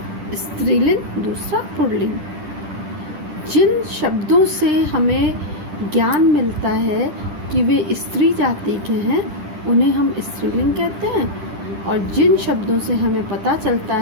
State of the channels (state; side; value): late; left; 10 ms